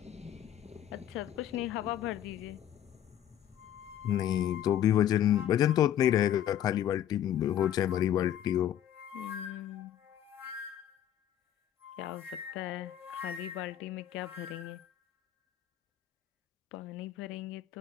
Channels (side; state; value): right; quieter; 11.0 dB